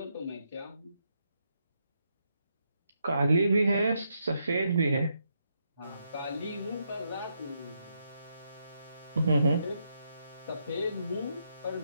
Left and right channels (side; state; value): both; inverted; correlation -0.79